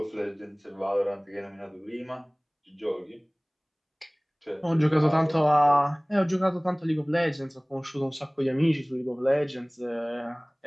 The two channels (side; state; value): both; identical; correlation 1.00